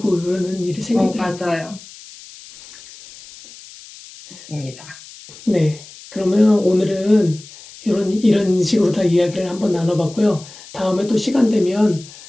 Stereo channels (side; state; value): left; noise; hiss, 19 dB below the sound